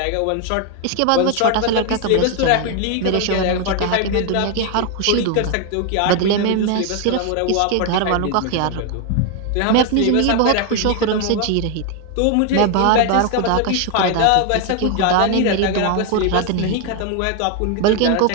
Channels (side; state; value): both; different; correlation 0.01